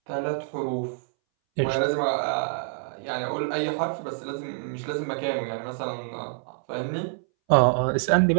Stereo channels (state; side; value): silent; left; 61 dB below the other